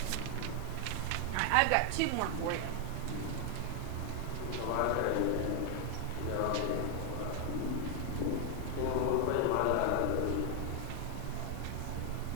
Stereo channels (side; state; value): both; different; correlation 0.00